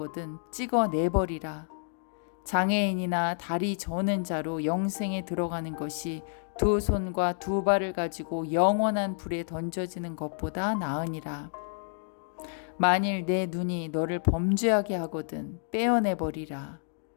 찍어내버리라. 장애인이나 다리 저는 자로 영생에 들어가는 것이 두 손과 두 발을 가지고 영원한 불에 던져지는 것보다 나으니라. 만일 내 눈이 너를 범죄하게 하거든 빼어내버리라.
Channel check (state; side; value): silent; right; digital silence